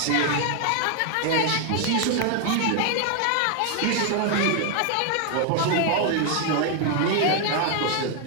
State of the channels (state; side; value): different; both; correlation 0.00